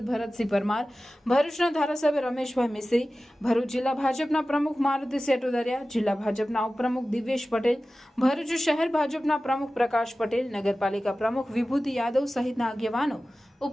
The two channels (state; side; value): normal; both; correlation 0.96